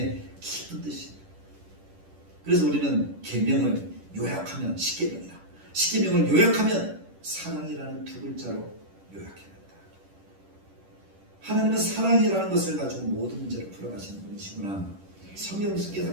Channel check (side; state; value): left; late; 10 ms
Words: 깊은 뜻이에요. 그래서 우리는 계명을 요약하면 십계명이다. 십계명을 요약하면 사랑이라는 두 글자로 요약해낸다. 하나님은 사랑이라는 것을 가지고 모든 문제를 풀어가시는 분이시구나. 성경에서